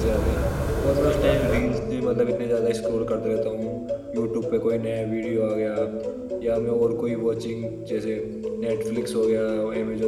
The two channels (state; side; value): identical; both; correlation 1.00